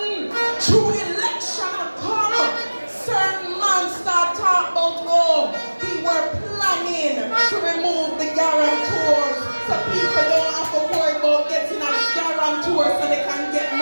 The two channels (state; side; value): inverted; both; correlation -1.00